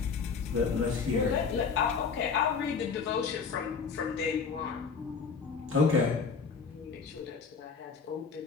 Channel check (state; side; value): quieter; right; 5.5 dB